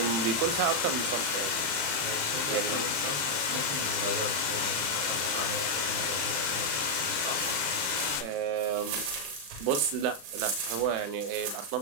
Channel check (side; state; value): left; late; 35 ms